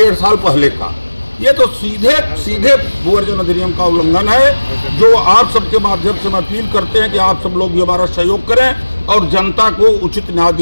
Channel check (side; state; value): both; inverted; correlation -1.00